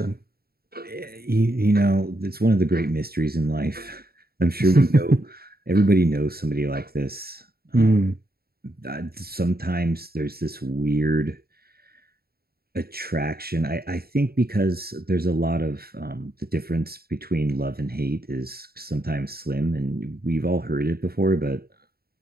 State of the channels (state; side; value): late; left; 0.45 ms